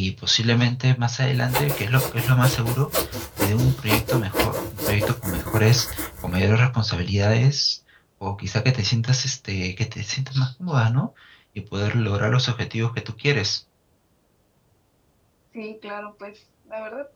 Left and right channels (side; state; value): both; identical; correlation 1.00